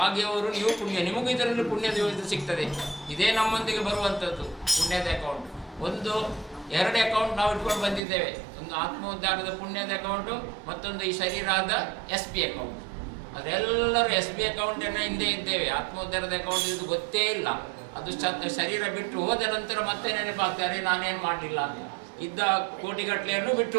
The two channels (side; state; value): left; drops out; at 8.0 s